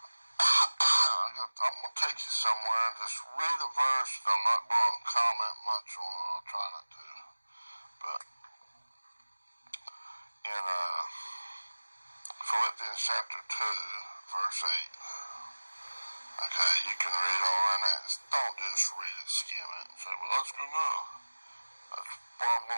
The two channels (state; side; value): inverted; both; correlation -1.00